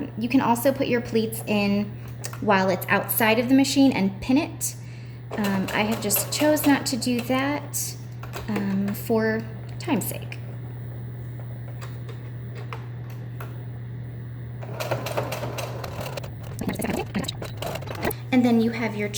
You can also put your pleats in while it's outside of the machine and pin it. I have just chose not to do that for time's sake. And then you have your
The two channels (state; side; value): identical; both; correlation 1.00